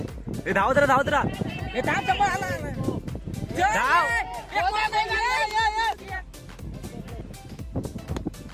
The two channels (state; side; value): identical; both; correlation 1.00